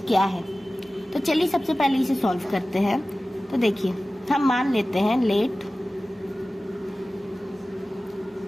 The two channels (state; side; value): normal; both; correlation 0.96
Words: क्या है। तो चलिए सबसे पहले इसे सॉल्व करते हैं। तो देखिए, हम मान लेते हैं लेट